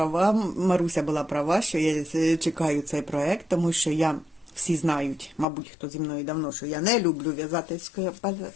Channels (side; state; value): right; drops out; at 5.5 s